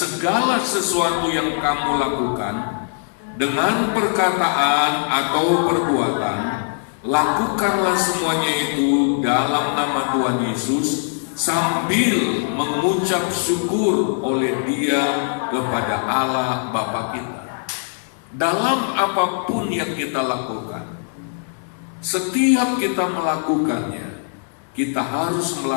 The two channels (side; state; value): right; silent; 65 dB below the other